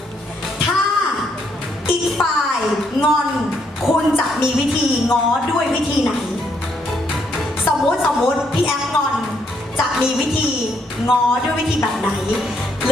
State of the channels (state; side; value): normal; both; correlation 0.73